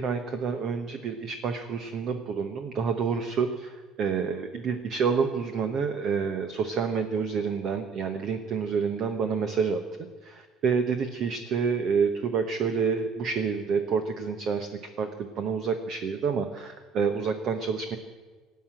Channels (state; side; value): quieter; left; 5.5 dB